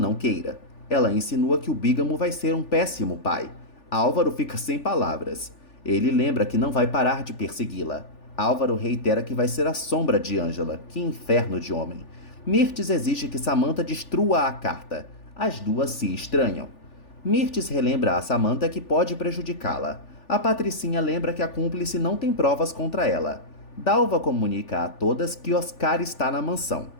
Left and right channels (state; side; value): late; right; 3.4 ms